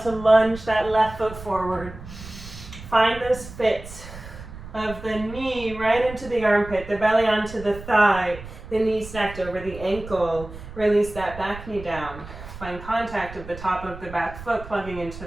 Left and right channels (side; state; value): right; noise; rumble, 14 dB below the sound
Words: to lunge that left foot forward. Find those fits of the knee right into the armpit, the belly onto the thigh, the knee stacked over the ankle. Release that back knee down. Find contact of the top of the back foot plugging into